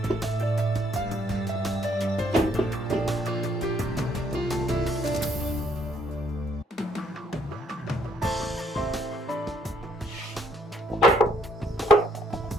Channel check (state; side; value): normal; both; correlation 0.68